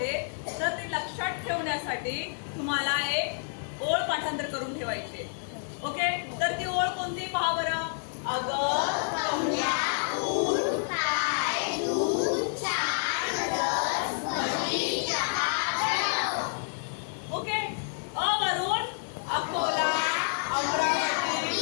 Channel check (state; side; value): silent; right; 58 dB below the other